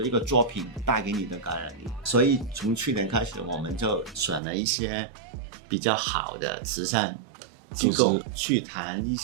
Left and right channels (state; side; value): drops out; left; at 4.4 s